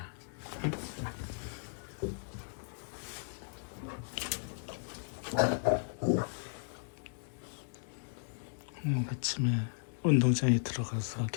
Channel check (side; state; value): right; silent; digital silence